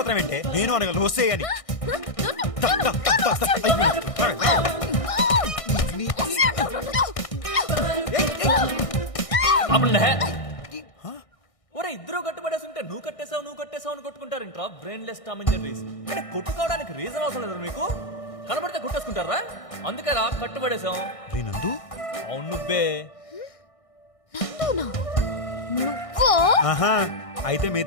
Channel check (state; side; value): late; right; 1.6 ms